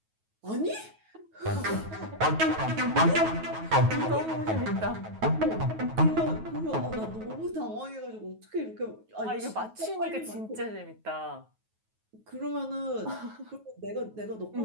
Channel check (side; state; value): left; late; 9.3 ms